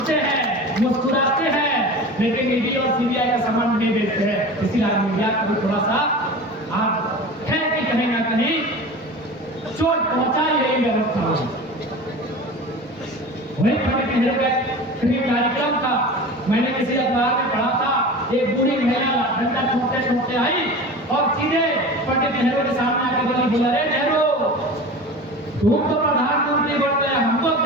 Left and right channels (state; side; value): normal; both; correlation 0.34